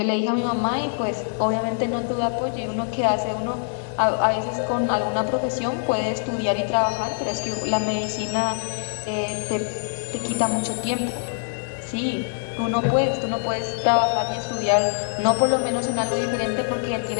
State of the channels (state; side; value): silent; right; digital silence